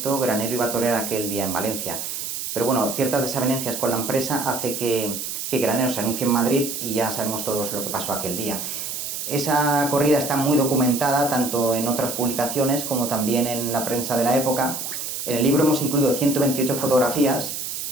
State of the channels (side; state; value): right; noise; hiss, 5 dB below the sound